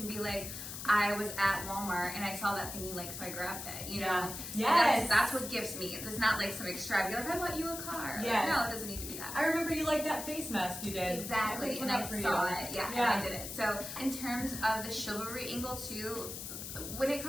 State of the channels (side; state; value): left; noise; hiss, 8 dB below the sound